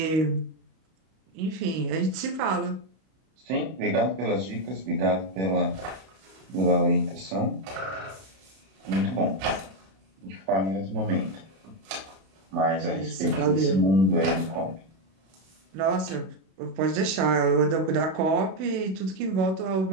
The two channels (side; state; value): left; late; 31 ms